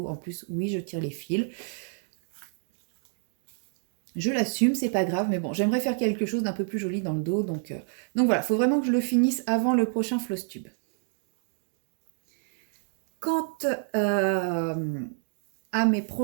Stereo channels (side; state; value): left; silent; 59 dB below the other